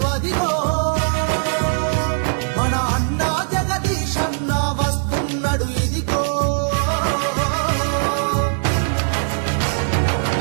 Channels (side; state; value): left; silent; digital silence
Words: అదిగో మన అన్నా జగదీశన్న వస్తున్నాడు ఇదిగో.